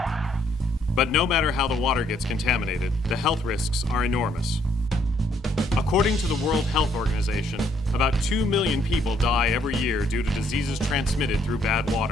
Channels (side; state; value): both; normal; correlation 0.68